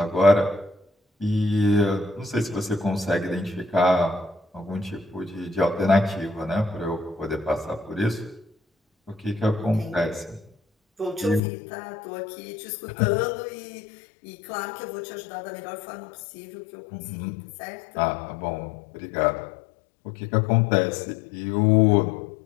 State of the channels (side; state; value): right; drops out; at 11.4 s